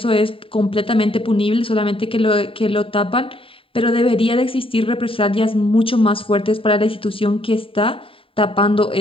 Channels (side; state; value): right; late; 0.26 ms